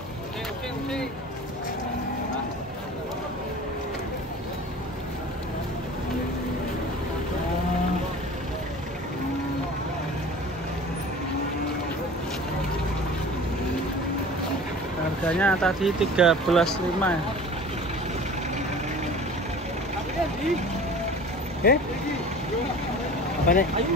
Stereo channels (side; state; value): both; normal; correlation 0.41